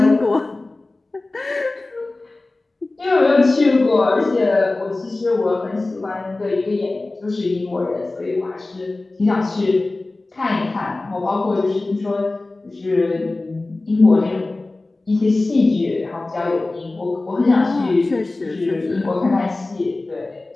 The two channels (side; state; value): right; quieter; 3.1 dB